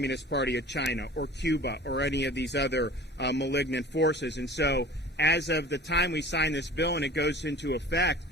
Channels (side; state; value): both; normal; correlation 0.43